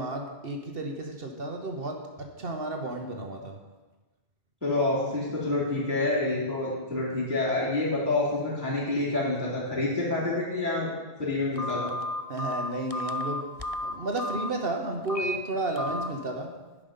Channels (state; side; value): late; left; 1.6 ms